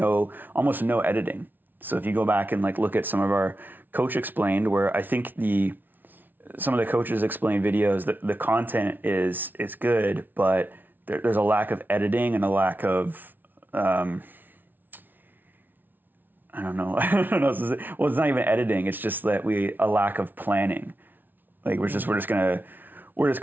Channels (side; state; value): left; late; 0.088 ms